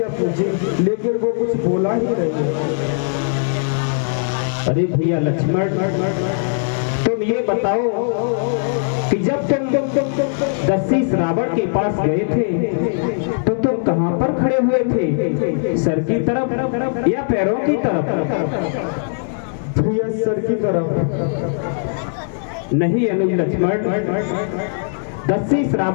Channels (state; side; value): silent; right; digital silence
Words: पूछी लेकिन वो कुछ बोला ही नहीं। अरे भैया लक्ष्मण, तुम ये बताओ कि जब तुम दस्यु रावण के पास गए थे तो तुम कहां पर खड़े हुए थे? सर की तरफ या पैरों की तरफ? भैया सर की तरफ। नहीं अनुज लक्ष्मण, दस्यु